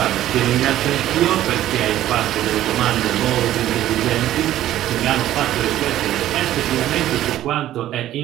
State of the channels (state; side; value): quieter; left; 13.2 dB